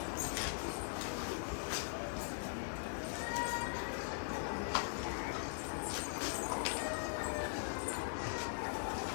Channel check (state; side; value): silent; right; digital silence